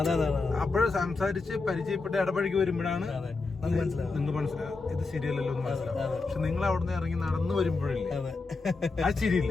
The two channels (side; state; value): right; quieter; 3.9 dB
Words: അപ്പോഴും സംസാരിച്ച് പരിചയപ്പെട്ട് ഇടപഴകി വരുമ്പോഴാണ് നിങ്ങൾക്ക് മനസ്സിലാവും ഇത് ശരിയല്ലല്ലോ എന്ന് മനസ്സിലാവും. പക്ഷെ നിങ്ങൾ അവിടുന്ന് ഇറങ്ങി നടന്നു വരുമ്പോഴില്ലേ ആ